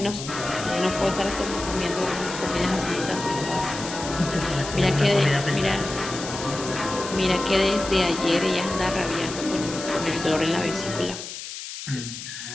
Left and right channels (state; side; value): noise; left; hiss, 9 dB below the sound